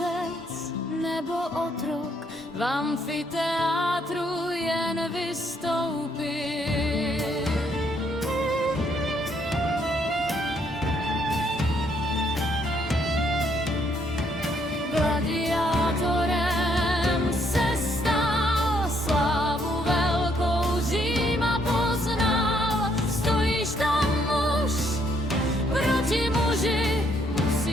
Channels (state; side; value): normal; both; correlation 0.70